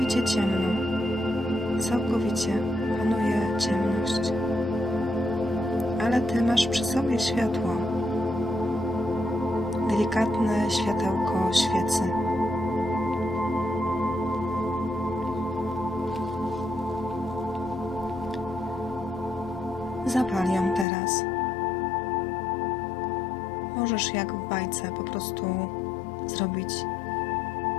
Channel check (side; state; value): right; drops out; at 20.9 s